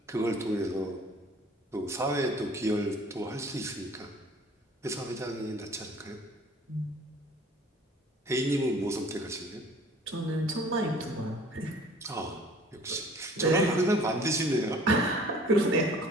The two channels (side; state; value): both; normal; correlation 0.51